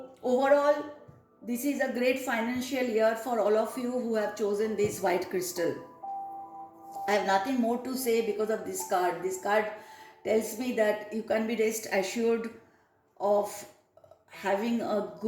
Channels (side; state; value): both; identical; correlation 1.00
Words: overall, this is a great financial year for all of you who have chosen this white crystal. I have nothing more to say because of this card. This card tells me that you can be rest assured of having a